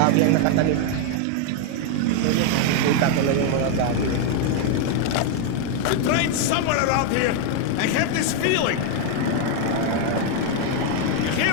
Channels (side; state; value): both; different; correlation 0.00